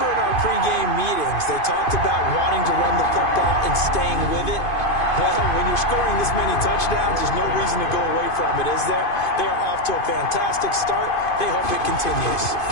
in our pregame meetings, they talked about wanting to run the football and staying with it. Well, when you're scoring this many touchdowns, there's no reason to go away from it, is there? They are off to a fantastic start. They hope it continues.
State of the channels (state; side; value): late; right; 2.5 ms